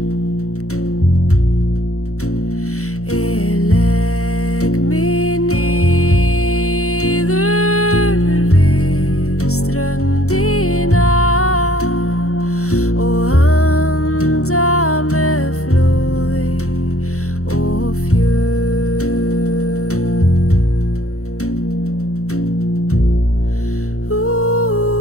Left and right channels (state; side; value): late; right; 0.64 ms